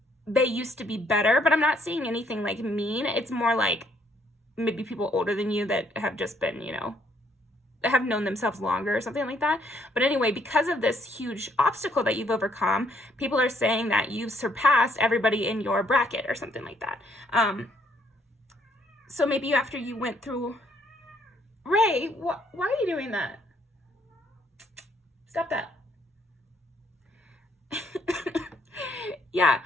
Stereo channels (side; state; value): both; normal; correlation 0.68